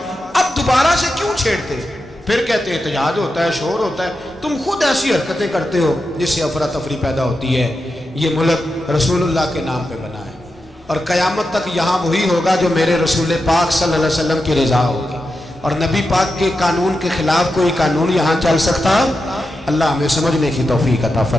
اب دوبارہ سے کیوں چھیڑتے؟ پھر کہتے احتجاج ہوتا ہے، شور ہوتا ہے۔ تم خود ایسی حرکتیں کرتے ہو جس سے افراتفری پیدا ہوتی ہے۔ یہ ملک رسول اللہ کے نام پہ بنا ہے، اور قیامت تک یہاں وہی ہوگا جو میرے رسول پاک صلی اللہ علیہ وسلم کی رضا ہوگی، اور نبی پاک کے قانون کے خلاف کوئی قانون یہاں چل سکتا؟ اللہ ہمیں سمجھنے کی توفیق عطا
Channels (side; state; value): both; normal; correlation 0.89